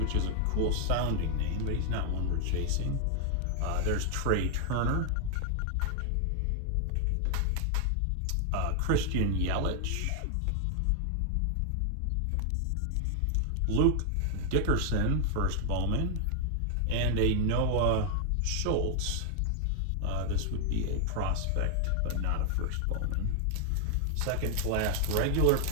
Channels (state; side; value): different; both; correlation 0.00